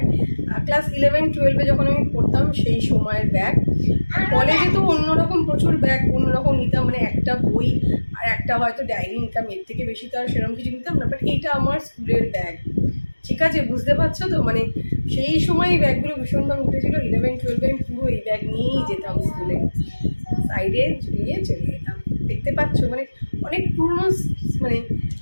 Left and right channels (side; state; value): both; inverted; correlation -1.00